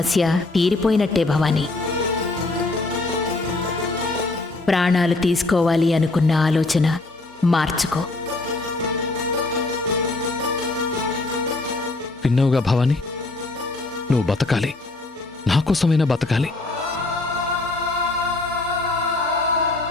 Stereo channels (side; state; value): right; quieter; 3.1 dB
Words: తీరిపోయినట్టే భవానీ. ప్రాణాలు తీసుకోవాలి అనుకున్న ఆలోచన మార్చుకో. విన్నావుగా భవాని, నువ్వు బతకాలి, నా కోసమైనా బతకాలి.